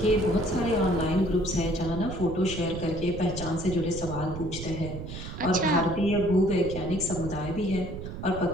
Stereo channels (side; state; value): right; noise; rumble, 9 dB below the sound